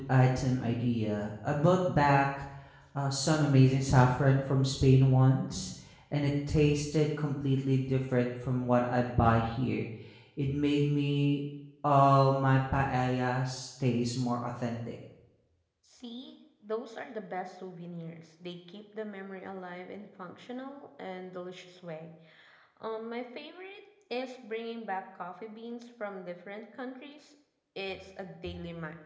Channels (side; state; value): both; identical; correlation 1.00